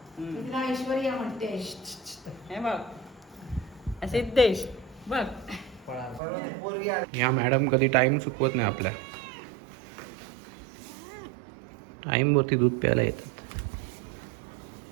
तिला ऐश्वर्या म्हणते. हे बघ सिद्धेश बघ. या मॅडम कधी टाइम चुकवत नाही आपल्या. टाइम वरती दूध प्यायला येतात.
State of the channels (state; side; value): drops out; left; at 6.2 s